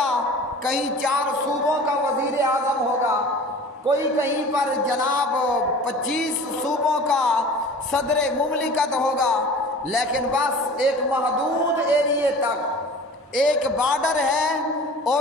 کہیں 4 صوبوں کا وزیر اعظم ہوگا، کوئی کہیں پر جناب 25 صوبوں کا صدر مملکت ہوگا، لیکن بس ایک محدود ایریے تک ایک بارڈر ہے،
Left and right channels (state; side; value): normal; both; correlation 0.41